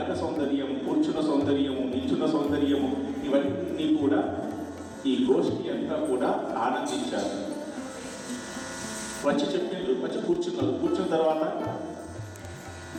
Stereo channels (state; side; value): identical; both; correlation 1.00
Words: సౌందర్యం, కూర్చున్న సౌందర్యము, నిల్చున్న సౌందర్యము, ఇవన్నీ కూడా ఈ గోష్ఠి అంతా కూడా ఆనందించారు. వచ్చి చెప్పిండ్రు, వచ్చి కూర్చున్నారు. కూర్చున్న తర్వాత